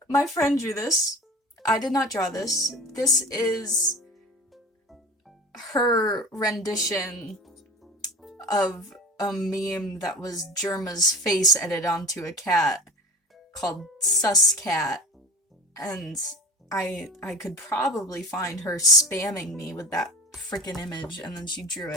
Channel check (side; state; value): both; normal; correlation 0.36